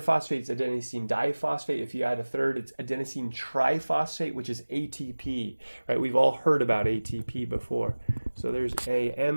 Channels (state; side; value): inverted; both; correlation -1.00